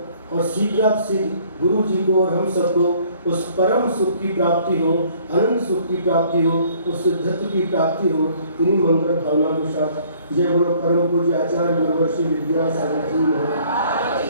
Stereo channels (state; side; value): inverted; both; correlation -0.59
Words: और शीघ्र गुरु जी को और हम सबको उस परम सुख की प्राप्ति हो, अनंत सुख की प्राप्ति हो, उस सिद्धत्व की प्राप्ति हो। इन्हीं मंगल भावना के साथ जय बोलो परम पूज्य आचार्य गुरुवर्षी विद्यासागर